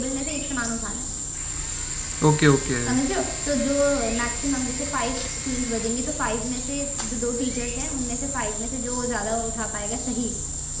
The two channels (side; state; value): both; identical; correlation 1.00